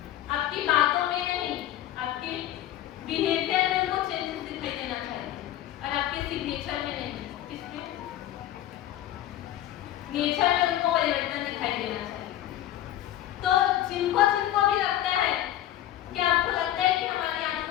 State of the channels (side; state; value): right; quieter; 12.8 dB